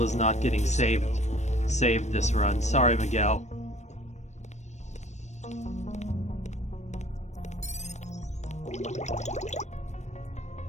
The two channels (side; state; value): right; late; 0.34 ms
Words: is not getting saved this run. Sorry, Miguel.